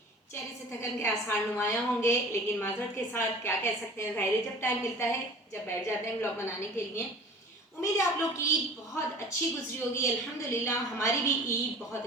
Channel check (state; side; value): normal; both; correlation 0.42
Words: चेहरे से थकन के आसार नुमाया होंगे, लेकिन माजरत के साथ क्या कह सकते हैं, ज़ाहिर है जब टाइम मिलता है, जब बैठ जाते हैं व्लॉग बनाने के लिए। उम्मीद है आप लोग की ईद बहुत अच्छी गुजरी होगी। अल्हम्दुलिल्लाह हमारी भी ईद बहुत